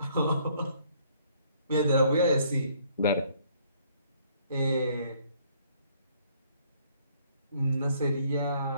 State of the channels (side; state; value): both; inverted; correlation -0.63